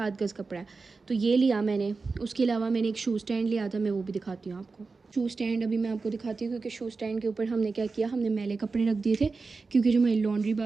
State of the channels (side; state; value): left; quieter; 4.2 dB